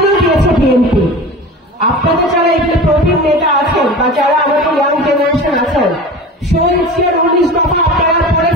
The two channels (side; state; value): both; normal; correlation 0.34